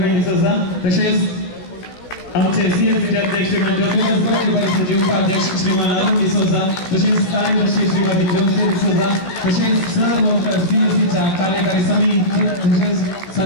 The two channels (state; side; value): late; right; 16 ms